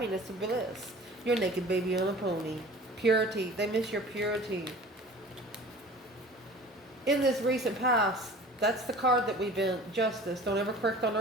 and bliss. Your naked baby on a pony. Purity. They miss your purity. In this recent past, that's the card that we've been. Justice. Don't ever correct on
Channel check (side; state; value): both; normal; correlation 0.43